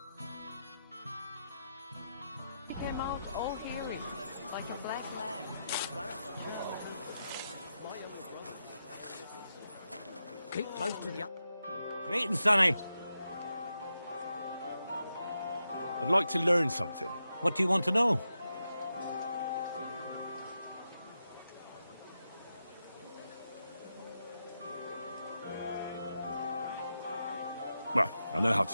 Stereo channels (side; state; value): both; inverted; correlation -0.87